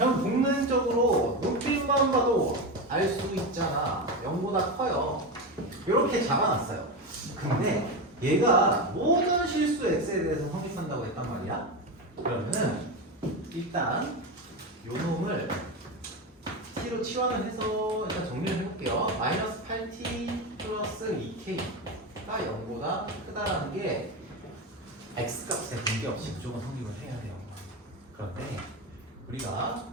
복면적으로 눈빛만 봐도 알 수 있잖아. 0보다 커요. 이렇게 잡아놨어요. 근데 얘가 모든 실수 x에 대해서 성립한다고 했단 말이야. 그러면은 일단 요 놈을 t로 치환을 해서 일단 정리를 해볼게요. 마이너스 8t 플러스 2k가 0보다 크다라는 게 x값에 관계없이 무조건 성립을 해야 돼요. 그런데 우리가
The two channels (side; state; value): both; normal; correlation 0.18